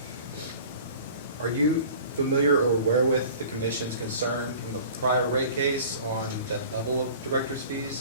Are you familiar or aware with the commission's concern from the prior rate case on that level of director's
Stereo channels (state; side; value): inverted; both; correlation -0.44